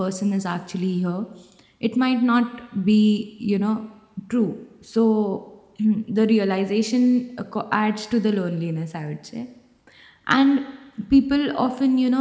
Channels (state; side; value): identical; both; correlation 1.00